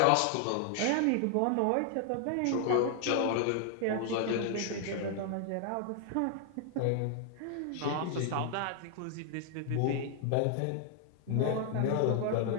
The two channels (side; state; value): both; different; correlation 0.00